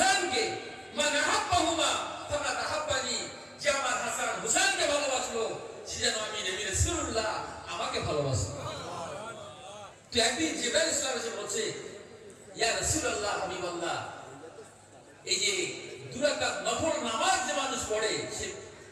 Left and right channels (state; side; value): identical; both; correlation 1.00